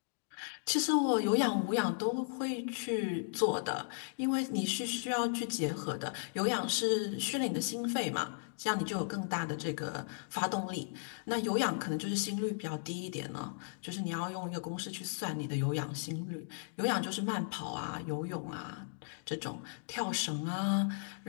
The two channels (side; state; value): right; silent; digital silence